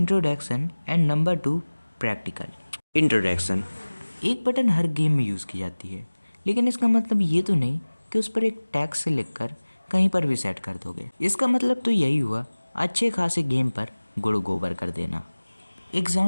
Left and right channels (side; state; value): both; inverted; correlation -1.00